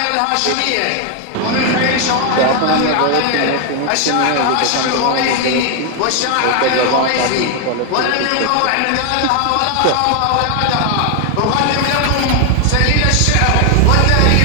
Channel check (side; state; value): both; different; correlation 0.00